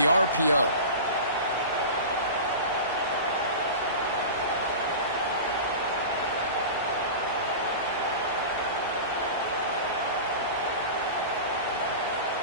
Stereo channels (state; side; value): inverted; both; correlation -0.31